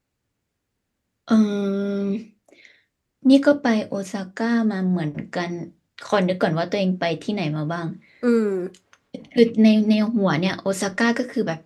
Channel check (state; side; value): identical; both; correlation 1.00